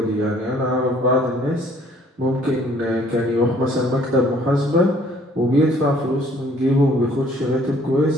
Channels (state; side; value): normal; both; correlation 0.59